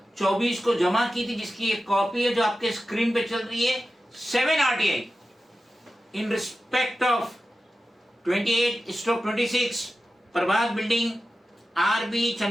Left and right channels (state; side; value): normal; both; correlation 0.93